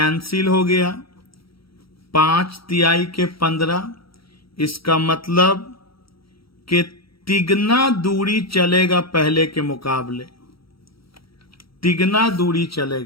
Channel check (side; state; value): right; late; 0.75 ms